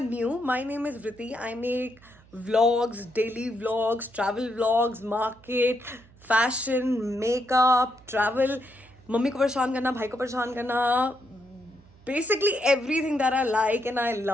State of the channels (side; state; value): right; noise; hum, 26 dB below the sound